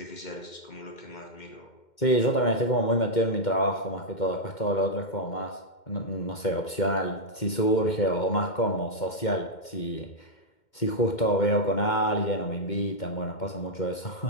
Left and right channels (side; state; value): right; late; 2.1 ms